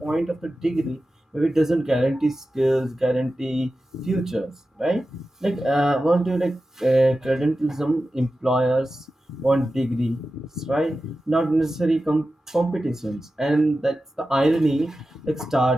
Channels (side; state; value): both; normal; correlation 0.93